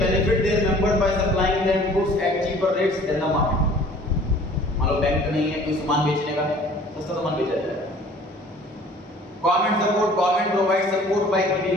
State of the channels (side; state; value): both; normal; correlation 0.50